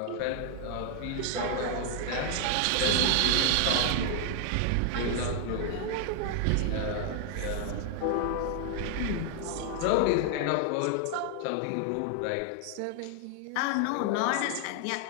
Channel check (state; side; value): different; both; correlation 0.00